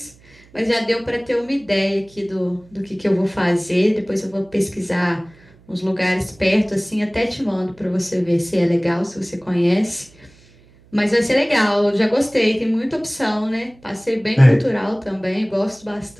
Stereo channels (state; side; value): noise; right; hum, 27 dB below the sound